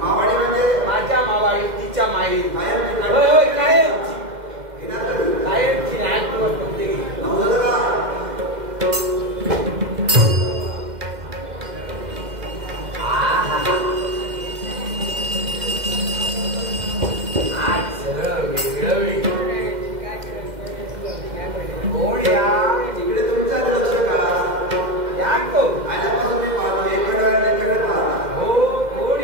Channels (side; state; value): left; late; 2.1 ms